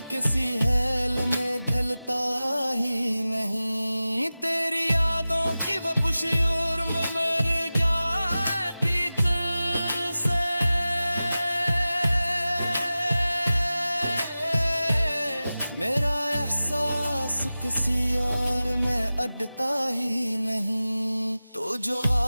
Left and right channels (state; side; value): inverted; both; correlation -0.96